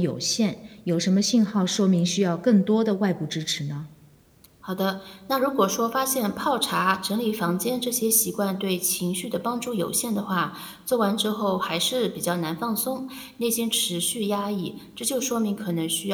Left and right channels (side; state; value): both; identical; correlation 1.00